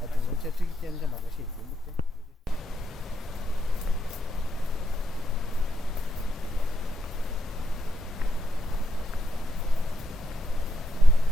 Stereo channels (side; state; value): both; normal; correlation 0.81